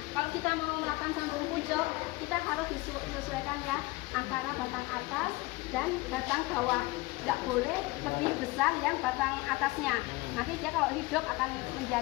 Kita harus disesuaikan ya antara batang atas dan batang bawah. Nggak boleh lebih besar yang batang atasnya. Nanti dia kalau hidup akan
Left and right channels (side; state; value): right; quieter; 21.7 dB